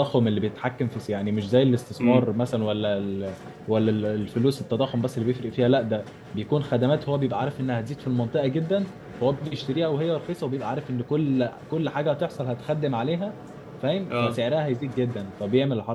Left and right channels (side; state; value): both; identical; correlation 1.00